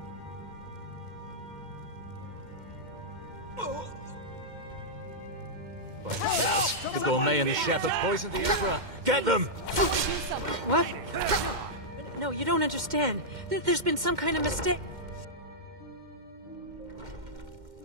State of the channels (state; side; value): late; left; 2.1 ms